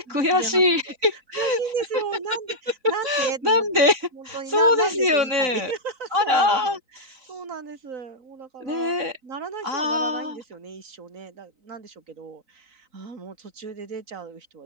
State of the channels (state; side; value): late; left; 3.9 ms